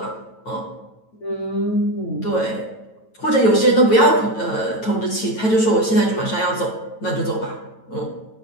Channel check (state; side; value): late; right; 9.1 ms